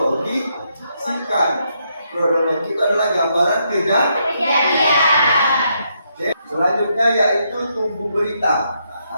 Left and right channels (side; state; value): both; inverted; correlation -0.77